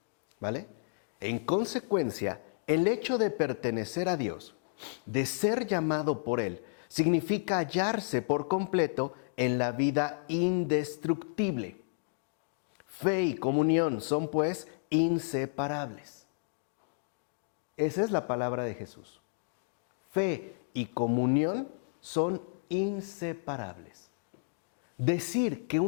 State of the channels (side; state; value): right; quieter; 39.0 dB